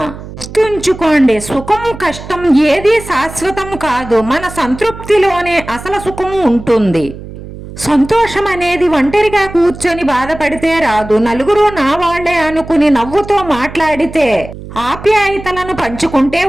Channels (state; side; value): noise; right; hum, 13 dB below the sound